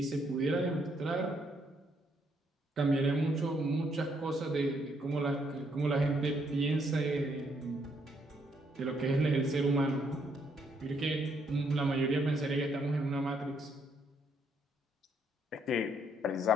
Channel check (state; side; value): normal; both; correlation 0.72